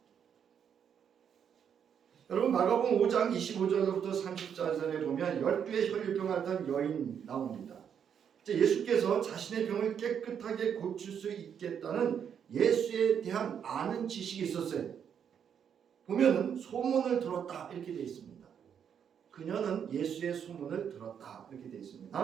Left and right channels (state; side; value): quieter; left; 8.0 dB